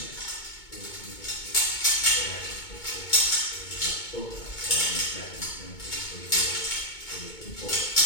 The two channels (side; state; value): right; late; 2.2 ms